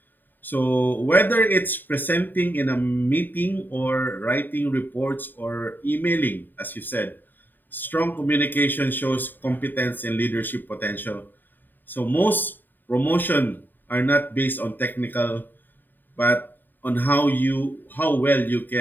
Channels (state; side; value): late; right; 0.091 ms